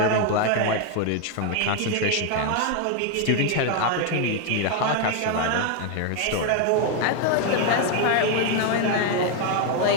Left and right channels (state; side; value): different; both; correlation 0.01